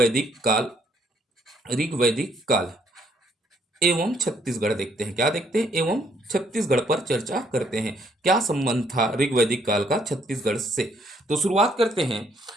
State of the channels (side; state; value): both; normal; correlation 0.68